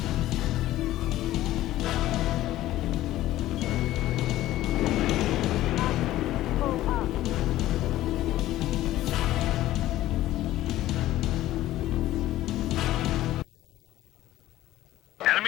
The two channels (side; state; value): right; quieter; 14.9 dB